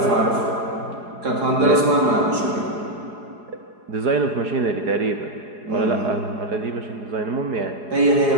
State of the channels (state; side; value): late; left; 4.8 ms